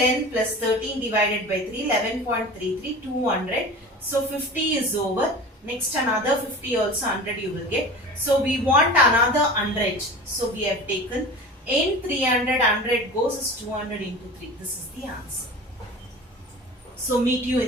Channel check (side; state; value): both; normal; correlation 0.36